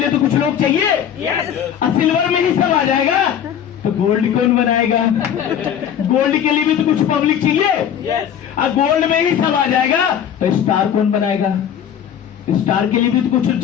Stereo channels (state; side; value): quieter; right; 9.1 dB